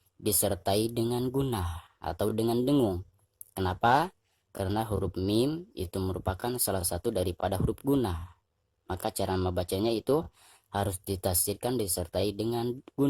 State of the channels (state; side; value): identical; both; correlation 1.00